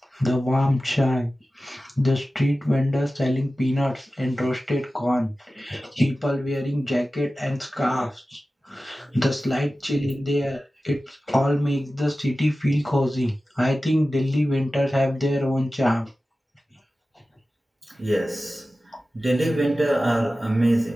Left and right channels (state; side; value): normal; both; correlation 0.95